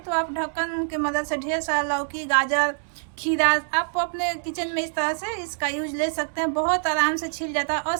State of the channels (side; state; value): left; silent; digital silence